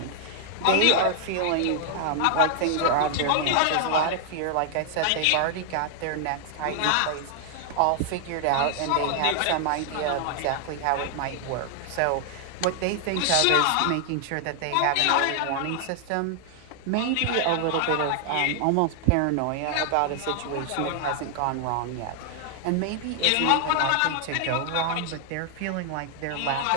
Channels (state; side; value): different; both; correlation 0.00